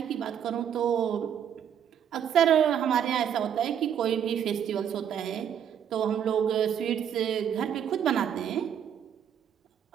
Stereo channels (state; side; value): quieter; left; 8.9 dB